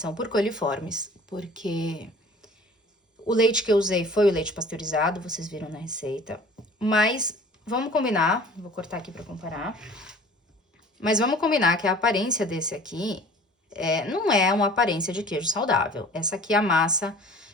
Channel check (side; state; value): both; normal; correlation 0.46